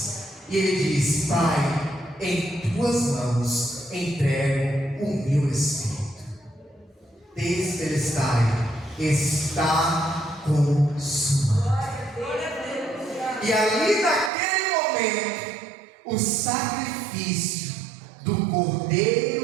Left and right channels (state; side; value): drops out; left; at 14.3 s